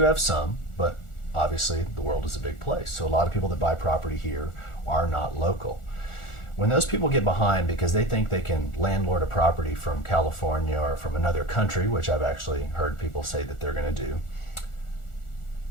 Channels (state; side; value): late; right; 1.4 ms